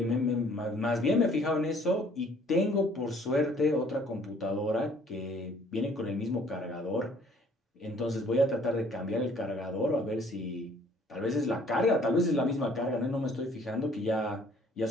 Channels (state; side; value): normal; both; correlation 0.58